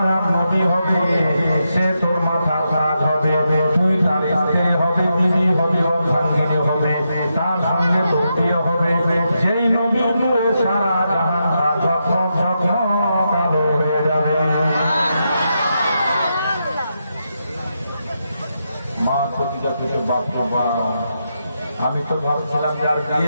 নবী হবে সে তোর মাথার তাজ হবে, তুই তার স্ত্রী হবে, বিবি হবে, অর্ধাঙ্গিনী হবে, তার সঙ্গে তোর বিয়ে হবে। যেই নবী নূরে সারা জাহান ঝকমক ঝকমক আলো হয়ে যাবে। মা খাদিজা কিছু বাবা আমি তো ভাবছিলাম যে আর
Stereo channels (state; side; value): inverted; both; correlation -0.84